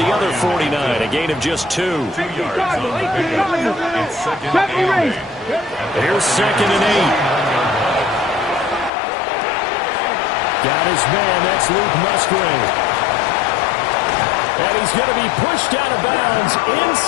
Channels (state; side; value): drops out; right; at 8.9 s